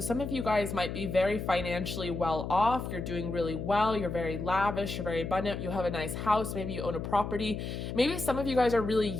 some of you guys might be very financially well off. You're doing really well. You're very lavish. You're very abundant. You have a nice house. Maybe you own a property. Maybe some of you guys are really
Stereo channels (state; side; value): noise; left; hum, 5 dB below the sound